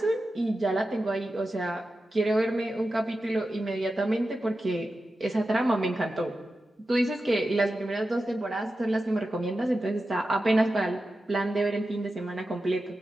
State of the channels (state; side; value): normal; both; correlation 0.92